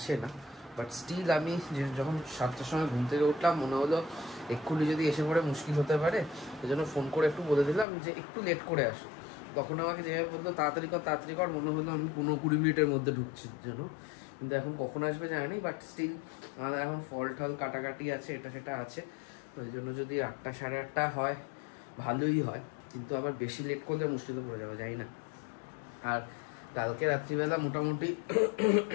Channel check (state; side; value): drops out; right; at 7.9 s